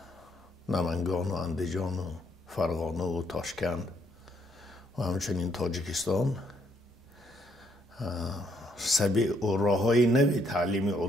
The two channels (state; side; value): normal; both; correlation 0.71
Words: نمنگان و اندیجان و فرغانه و تاشکند و همچنین تاجیکستان سبیل و راه‌های نوی تعلیم